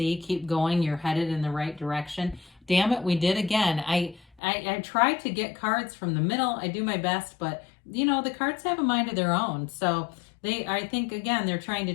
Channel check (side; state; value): right; drops out; at 4.4 s